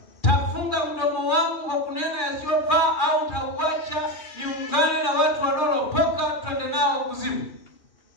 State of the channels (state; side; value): late; right; 2.4 ms